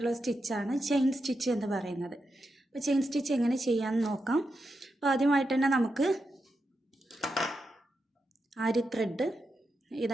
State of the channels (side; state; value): both; normal; correlation 0.87